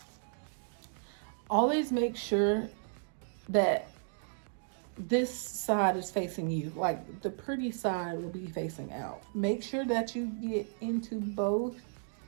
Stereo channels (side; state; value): left; silent; digital silence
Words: Always make sure that this side is facing you, like the pretty side will be facing out. Make sure that you get into both